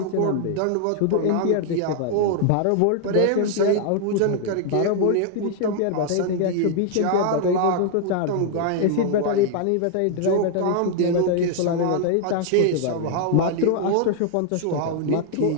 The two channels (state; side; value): different; both; correlation 0.00